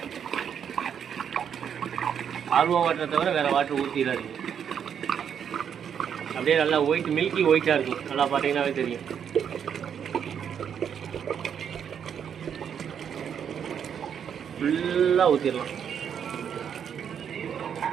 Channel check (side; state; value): left; quieter; 8.1 dB